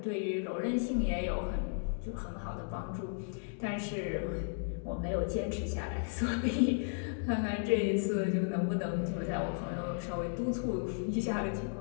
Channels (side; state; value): right; silent; digital silence